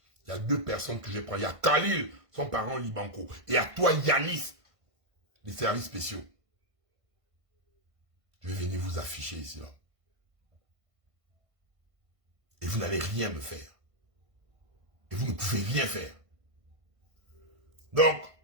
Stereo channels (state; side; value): late; left; 1.5 ms